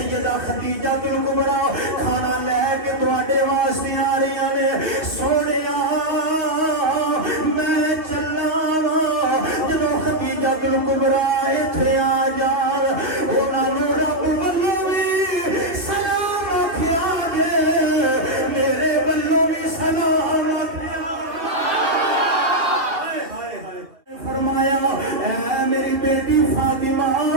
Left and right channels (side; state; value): left; late; 2.5 ms